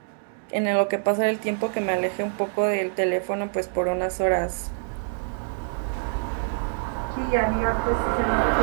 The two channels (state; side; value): silent; left; digital silence